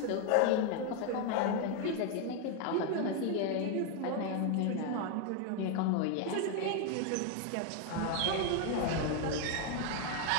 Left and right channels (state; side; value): different; both; correlation 0.01